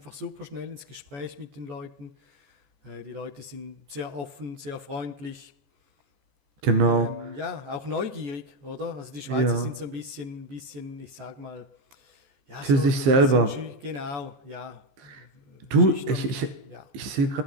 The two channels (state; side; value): late; left; 14 ms